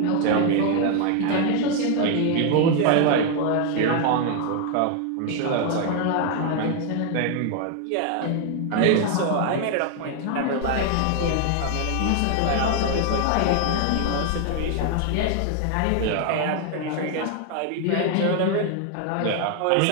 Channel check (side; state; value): both; different; correlation 0.00